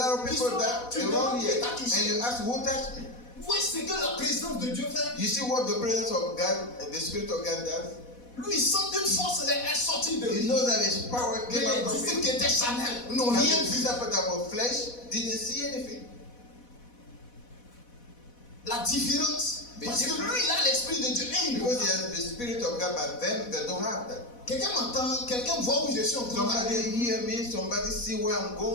of Qui people sont là. that Tu around demandes here. qui t'a And touché. you ask, who touched me? Vous voyez ce que la présence de Dieu fait. You see what the presence of God and the Spirit of God does? Lui, il sent une force est sortie de You lui. know that his power Mais came out les of disciples him. qui étaient charnels n'ont But rien the vu. disciples that were flesh didn't see anything. La différence. Parce que lui, il a l'esprit de Dieu. Et il Because he has the Spirit of God, but them, they don't have that. Quelqu'un m'entend, quelqu'un voit où je suis en train Somebody d'aller. hear me, somebody see where I'm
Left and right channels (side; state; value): right; late; 4.1 ms